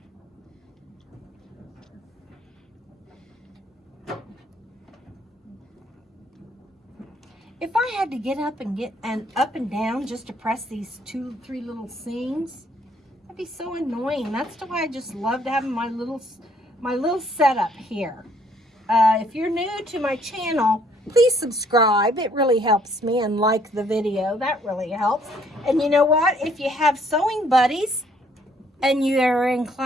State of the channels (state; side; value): normal; both; correlation 0.65